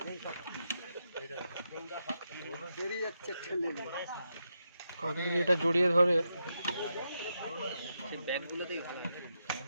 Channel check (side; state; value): both; inverted; correlation -0.85